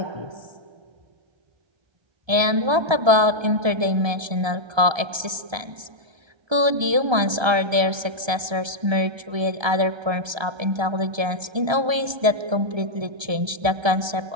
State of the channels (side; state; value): left; late; 1.3 ms